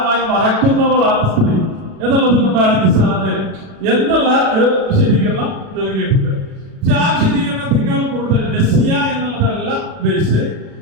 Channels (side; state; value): left; late; 36 ms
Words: മറക്കുന്നവളാണ് സ്ത്രീ എന്നുള്ളത് കൊണ്ടാണ് നിസാ എന്നുള്ള ഒരു വിശദീകരണം നൽകിയിട്ടുണ്ട്. പക്ഷെ ആ വിശദീകരണത്തെക്കാൾ കൂടുതൽ നസിയ എന്നുള്ളതല്ല ബേസ്.